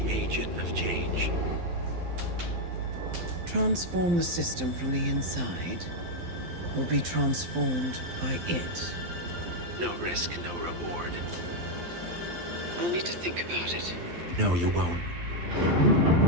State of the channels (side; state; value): left; late; 12 ms